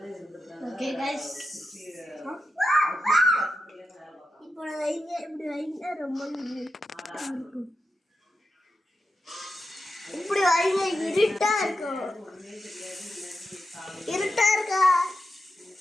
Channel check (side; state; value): both; normal; correlation 0.88